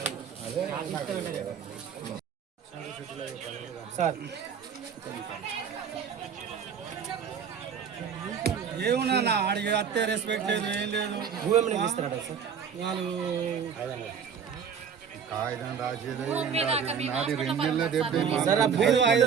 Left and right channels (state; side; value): quieter; left; 7.1 dB